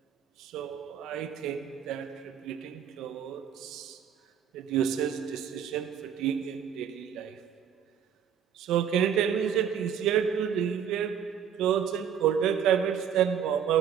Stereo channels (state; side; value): quieter; left; 8.5 dB